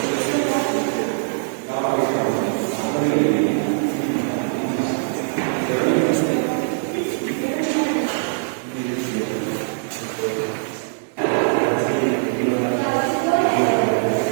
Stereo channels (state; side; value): silent; left; 64 dB below the other